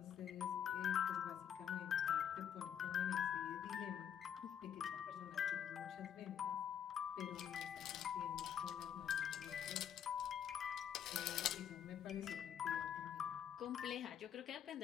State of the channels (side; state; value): right; quieter; 8.9 dB